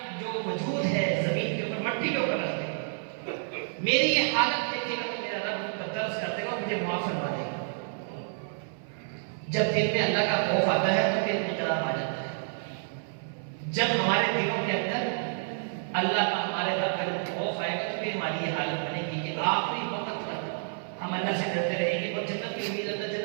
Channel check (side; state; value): left; silent; 58 dB below the other